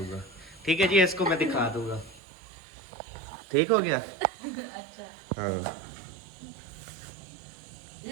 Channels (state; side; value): drops out; left; at 2.2 s